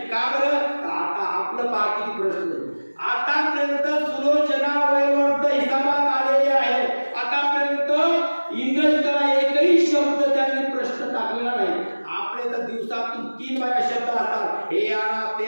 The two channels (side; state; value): both; inverted; correlation -1.00